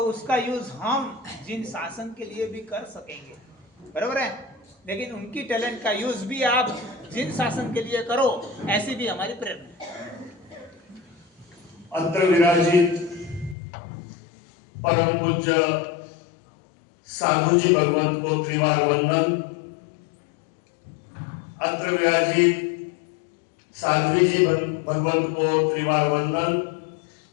उसका यूज हम जिन शासन के लिए भी कर सकेंगे, बराबर है। लेकिन उनकी टैलेंट का यूज भी आप जिन शासन के लिए करो, ऐसी भी हमारी प्रेरणा है। अत्र विराजित परम पूज्य साधु जी भगवंत को त्रिवार वंदन। अत्र विराजित साध्वी जी भगवंत को त्रिवार वंदन।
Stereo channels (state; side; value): drops out; right; at 13.6 s